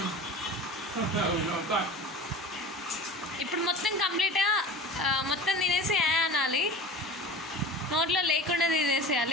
ఇప్పుడు మొత్తం కంప్లీట్గా మొత్తం తినేసి అనాలి. నోట్లో లేకుండా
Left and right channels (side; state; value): both; normal; correlation 0.35